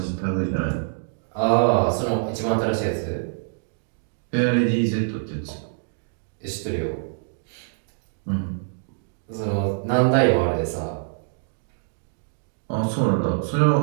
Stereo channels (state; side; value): silent; left; digital silence